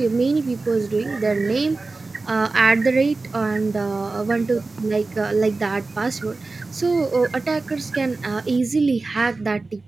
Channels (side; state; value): left; quieter; 3.6 dB